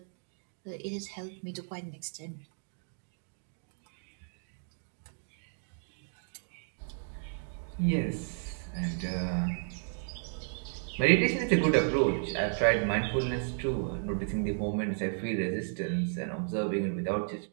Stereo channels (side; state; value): left; silent; digital silence